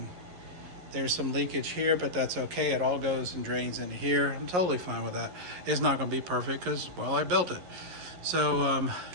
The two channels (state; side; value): late; left; 11 ms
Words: There's some leakage here, but that's okay. It all goes and drains into here. I'm totally fine with that. It's not gonna be perfect because, well, I built it. So